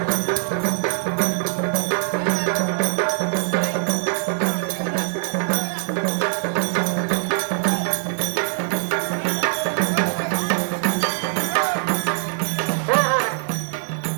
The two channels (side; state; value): left; silent; 60 dB below the other